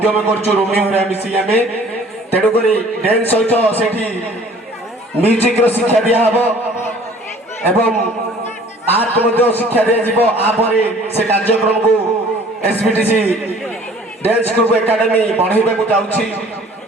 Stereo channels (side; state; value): both; normal; correlation 0.52